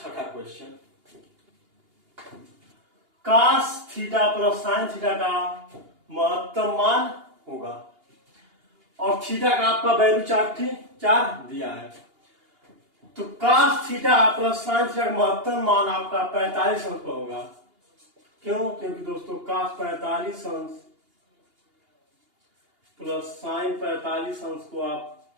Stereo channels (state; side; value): late; left; 2.8 ms